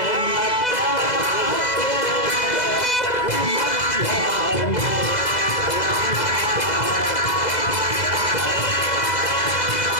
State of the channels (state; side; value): late; right; 2.0 ms